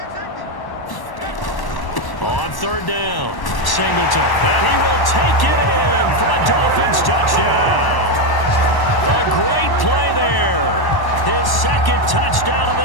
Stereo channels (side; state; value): right; late; 1.1 ms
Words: On 3rd down, Singleton, and he will take it in for a Dolphins touchdown. A great play there. His 2nd touchdown of